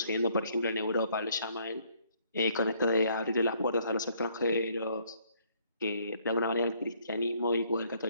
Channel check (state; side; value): inverted; both; correlation -0.66